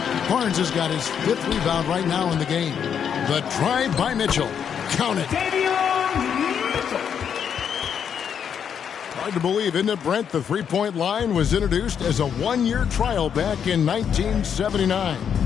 Barnes has got his 5th rebound right now in the game. The drive by Mitchell. Count it. Hard to believe, isn't it, Brent? The three-point line was introduced as a 1-year trial back in 1979.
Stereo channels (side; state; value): right; quieter; 7.9 dB